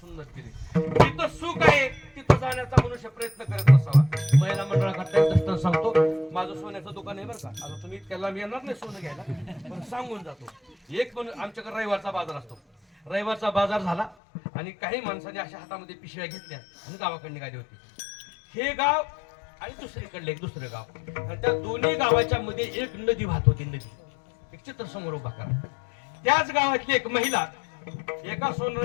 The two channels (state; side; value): drops out; right; at 14.2 s